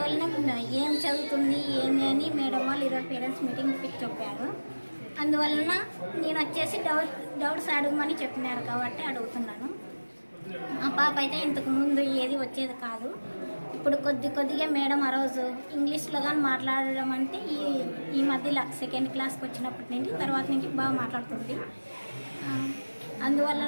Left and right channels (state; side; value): inverted; both; correlation -1.00